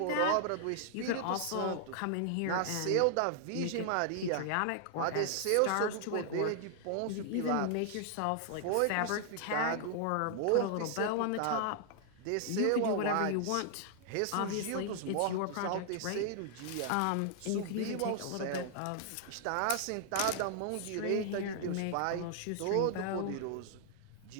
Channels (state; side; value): different; both; correlation 0.00